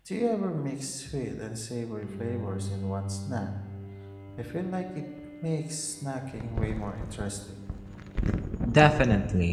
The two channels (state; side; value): identical; both; correlation 1.00